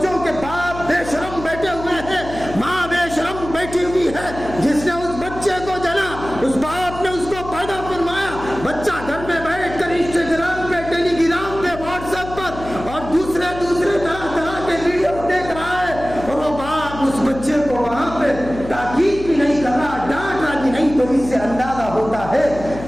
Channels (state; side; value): noise; left; hum, 12 dB below the sound